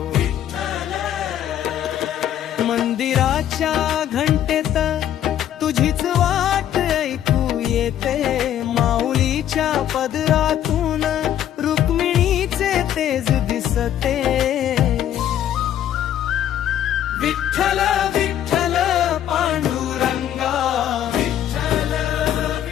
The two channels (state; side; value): quieter; right; 10.9 dB